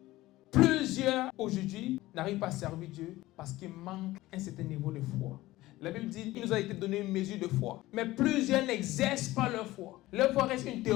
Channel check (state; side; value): quieter; right; 17.5 dB